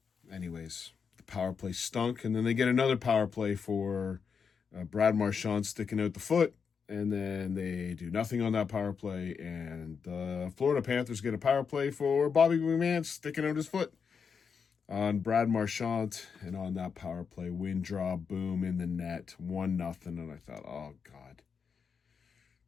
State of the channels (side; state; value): right; quieter; 6.1 dB